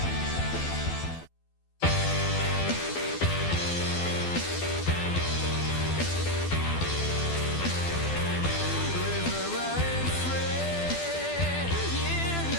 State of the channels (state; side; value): late; right; 12 ms